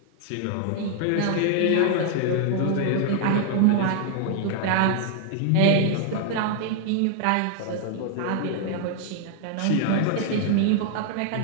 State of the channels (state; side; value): different; both; correlation 0.00